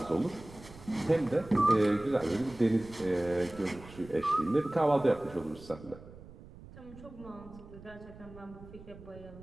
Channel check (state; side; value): noise; right; rumble, 18 dB below the sound